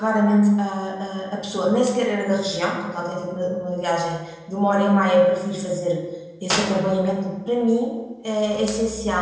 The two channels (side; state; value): both; identical; correlation 1.00